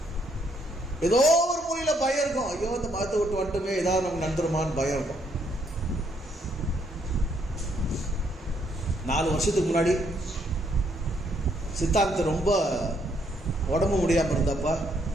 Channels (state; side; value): normal; both; correlation 0.71